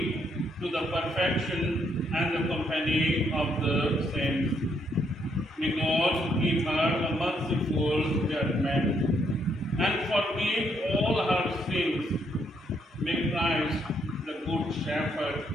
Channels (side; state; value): both; normal; correlation 0.73